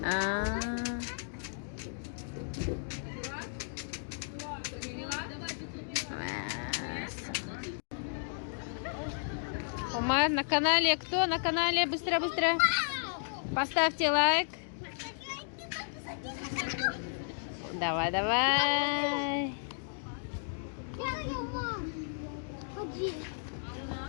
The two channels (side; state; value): right; silent; digital silence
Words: Умар на канале. Кто на канале? Быстро. Поставьте лайк. Давай. Ходи.